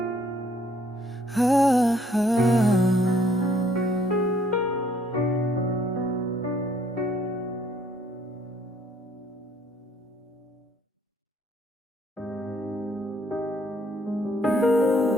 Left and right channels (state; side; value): normal; both; correlation 0.64